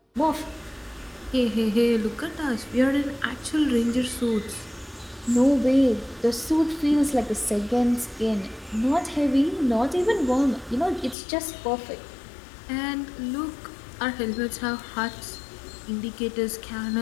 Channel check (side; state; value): right; drops out; at 11.2 s